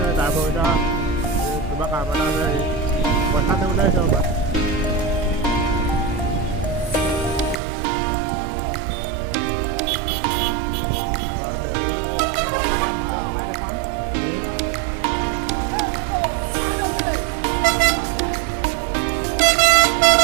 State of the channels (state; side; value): drops out; left; at 7.6 s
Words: তারপর ওইটা কিবা কাম এটা আছে পইচা দিবলৈ আহিছে ৰ'বা